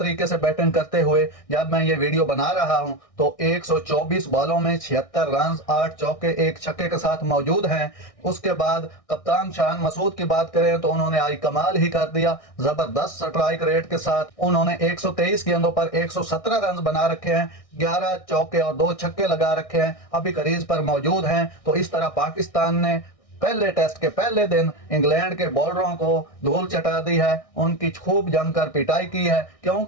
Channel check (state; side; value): late; right; 1.6 ms